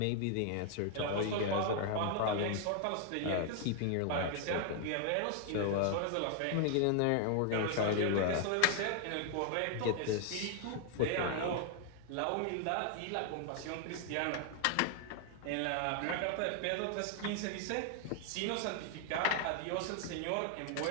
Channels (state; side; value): different; both; correlation 0.00